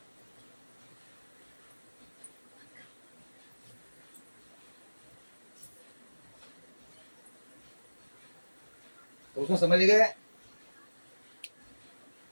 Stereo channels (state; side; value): inverted; both; correlation -1.00